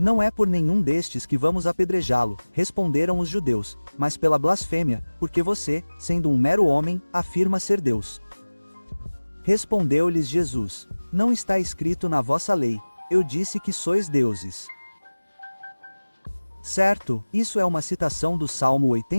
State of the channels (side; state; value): both; inverted; correlation -1.00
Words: é por nenhum destes que vamos apedrejá-lo, responderam os judeus, mas pela blasfêmia, porque você, sendo um mero homem, afirma ser Deus. Respondeu-lhes Jesus: não está escrito na vossa lei, eu disse que sois deuses. Certo, isso é uma citação do Salmo